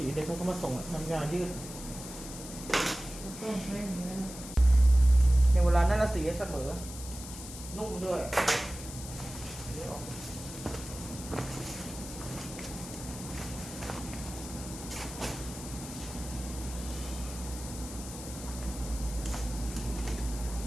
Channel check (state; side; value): noise; left; hiss, 12 dB below the sound